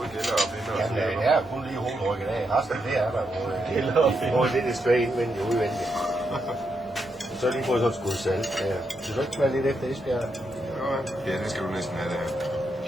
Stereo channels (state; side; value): normal; both; correlation 0.82